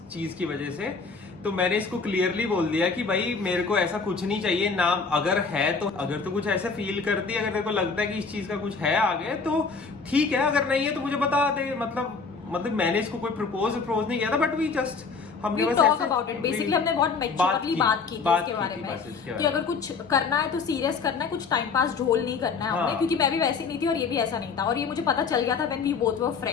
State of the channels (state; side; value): quieter; right; 4.9 dB